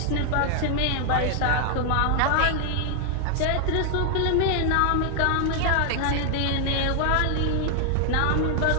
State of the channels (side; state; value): both; different; correlation 0.00